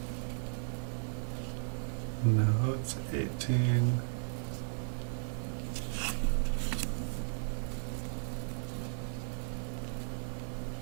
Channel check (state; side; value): silent; left; 54 dB below the other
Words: No, it's 18.